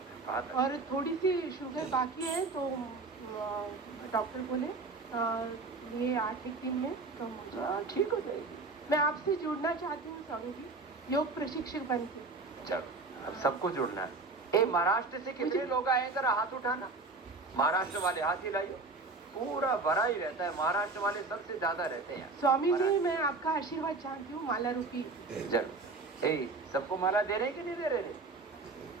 बात है। और थोड़ी सी शुगर बाकी है, तो डॉक्टर बोले ये 8-1 दिन में कम हो जाए, ठीक हो जाएगी। मैं आपसे जुड़ना चाहती हूँ स्वामी जी, योग प्रशिक्षक बन के। चलो, अब सबको जुड़ना है। महाराष्ट्र से कितने लोग आए हैं, जरा हाथ उठाना। महाराष्ट्र वाले हाथ हिलाइए। पूरा भरा ही रहता है, महाराष्ट्र वाले सबसे ज्यादा रहते हैं। स्वामी जी, मैं आपका आशीर्वाद चाहती हूँ, माला रूपी। जरूर। सबको माला दे रहे कि नहीं दे रहे?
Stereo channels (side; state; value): left; quieter; 3.6 dB